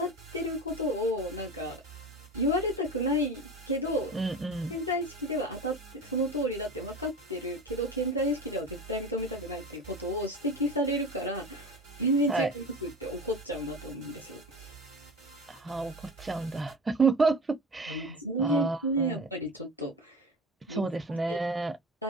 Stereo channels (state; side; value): normal; both; correlation 0.31